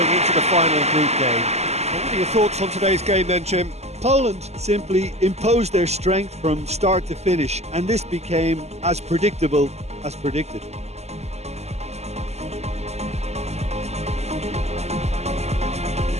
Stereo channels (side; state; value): left; late; 0.32 ms